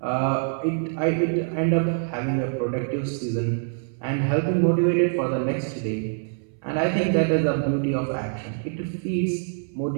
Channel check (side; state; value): left; silent; 62 dB below the other